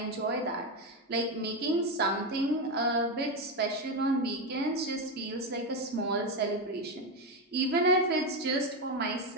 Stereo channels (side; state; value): both; normal; correlation 0.11